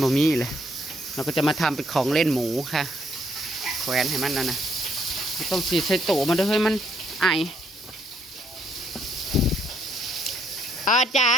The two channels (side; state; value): both; normal; correlation 0.70